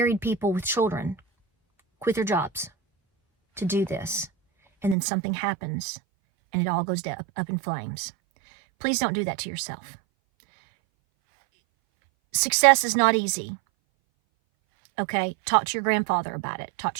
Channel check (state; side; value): drops out; left; at 5.0 s